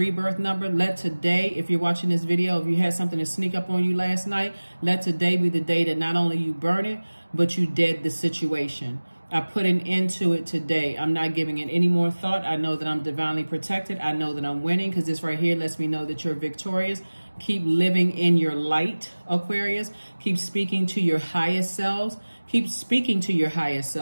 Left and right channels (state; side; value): inverted; both; correlation -1.00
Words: number, let today, if you're watching this video, if you had something to sneak up on you last night, let today be the day that not only you burn it, but you dead the situation. I put an end to it today. I'm not giving it any more thought. I know that I'm divinely protected. I know that I'm winning, because this right here lets me know that you're victorious. Keep living in your light, Aquarius. Keep speaking to your highest selves. Keep speaking to your highest